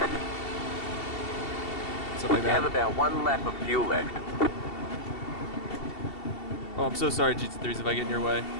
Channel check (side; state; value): right; late; 2.7 ms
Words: stuff like We have that. about 1 lap of fuel left. Oh, I'm so sorry, GT3s, if I get in your way.